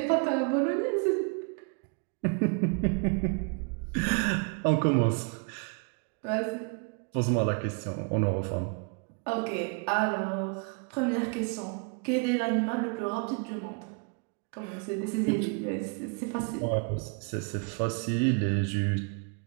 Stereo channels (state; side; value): quieter; left; 37.2 dB